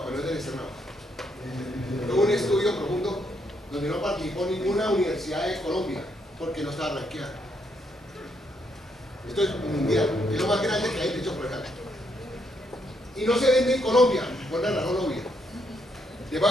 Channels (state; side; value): normal; both; correlation 0.75